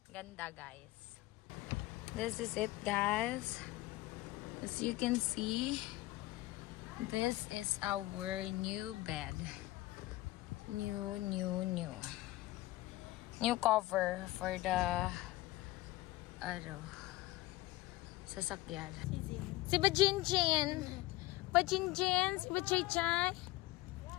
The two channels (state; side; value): quieter; right; 18.5 dB